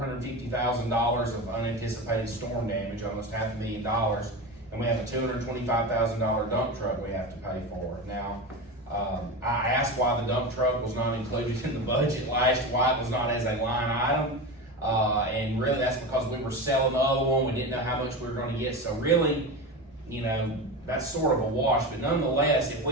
of unanticipated storm damage, almost $500,000, and we have a $225,000 dump truck we have to pay for. Now, I asked why the dump truck was not included in the budget why it was not as a line item. And really that's because we were selling the other one, we didn't know how much we were gonna get, so really, that's sort of a wash, but nonetheless, if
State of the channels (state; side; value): normal; both; correlation 0.24